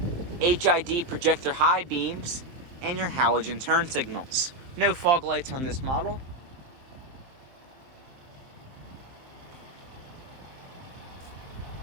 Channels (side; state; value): left; late; 23 ms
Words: HID projector high beams, and your halogen turn signals. No fog lights on this model.